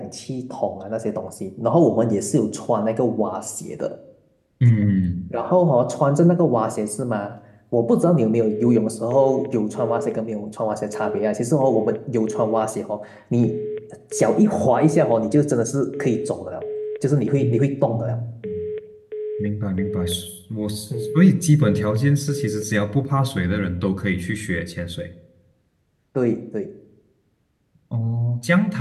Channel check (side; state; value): both; identical; correlation 1.00